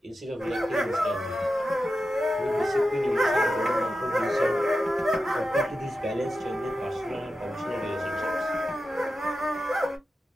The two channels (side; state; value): both; normal; correlation 0.91